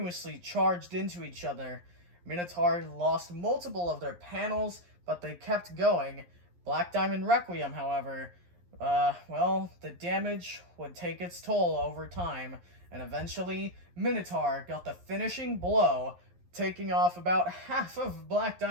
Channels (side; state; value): left; late; 11 ms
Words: charged into each other. Minotaur lost multiple of their panels, but they kept going. Black Diamond Requiem, however, well, the damage would take its toll over time, and eventually Minotaur got the finishing blow, taking off about half of Black